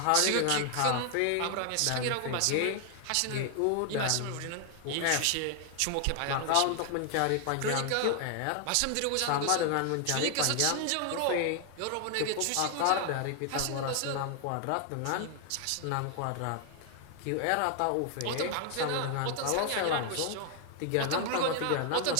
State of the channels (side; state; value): both; different; correlation 0.00